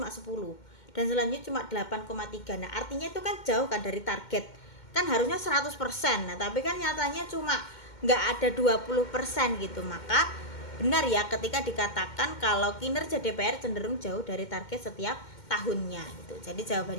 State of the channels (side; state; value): right; late; 2.1 ms